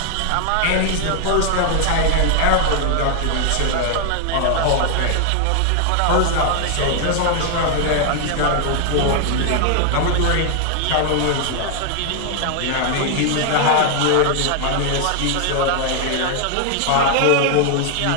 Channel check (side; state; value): both; different; correlation 0.00